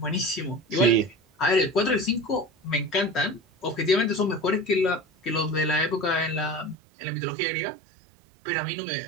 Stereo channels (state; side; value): drops out; left; at 6.8 s